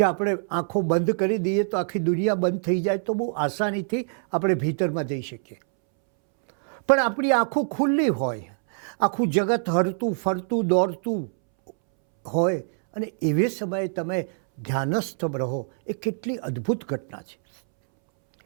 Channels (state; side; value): silent; left; 62 dB below the other